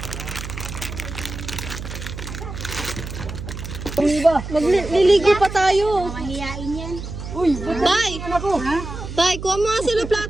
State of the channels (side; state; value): right; noise; hum, 9 dB below the sound